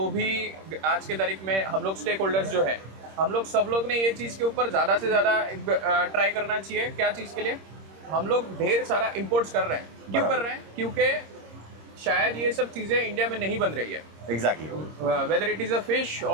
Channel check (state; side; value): late; left; 26 ms